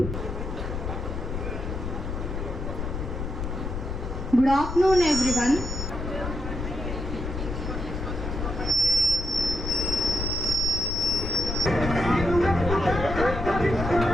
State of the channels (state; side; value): noise; left; rumble, 4 dB below the sound